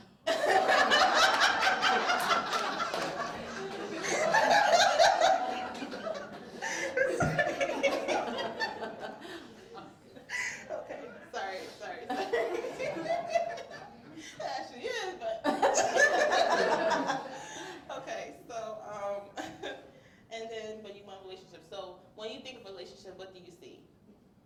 Okay, sorry. It actually is, but. Okay, so, and then, but you want a relationship. So when you think of a relationship, what do you see?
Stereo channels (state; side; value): identical; both; correlation 1.00